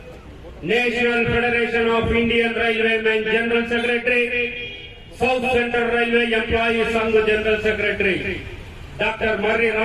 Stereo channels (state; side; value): identical; both; correlation 1.00